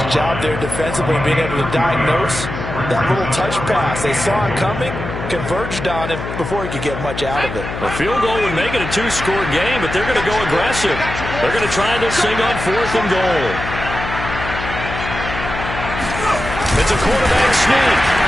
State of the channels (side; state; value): left; noise; hum, 7 dB below the sound